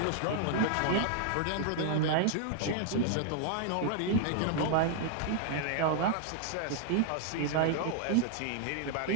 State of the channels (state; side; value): different; both; correlation 0.00